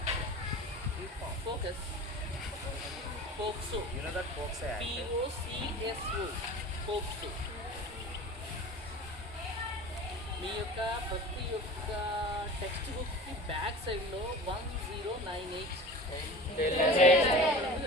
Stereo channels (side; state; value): both; normal; correlation 0.37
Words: Focus. Pokso. You know that Pokso Act? POCSO. Pokso. మీ యొక్క ప్రతి ఒక్క text బుక్కి back సైడ్లో 1098